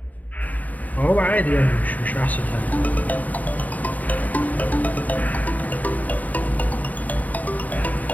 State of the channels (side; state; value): right; late; 0.076 ms